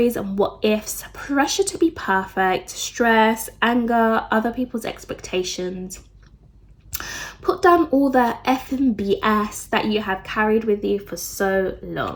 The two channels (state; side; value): identical; both; correlation 1.00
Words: and what ifs, pressure to be perfect, stress, anger, other people's expectations. Put down all the effing BS that you have carried with you for so